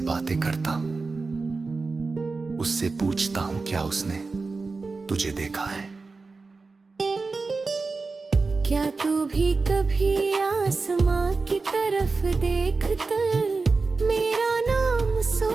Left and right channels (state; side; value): quieter; left; 4.0 dB